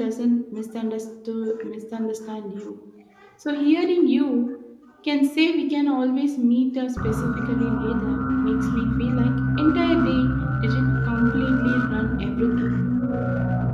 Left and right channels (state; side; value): identical; both; correlation 1.00